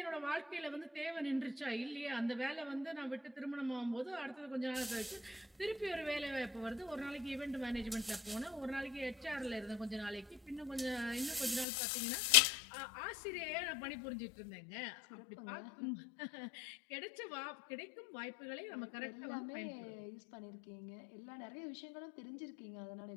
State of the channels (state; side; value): drops out; right; at 11.7 s